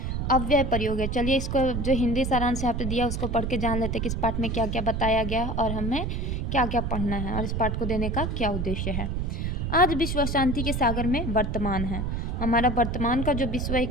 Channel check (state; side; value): noise; right; rumble, 1 dB below the sound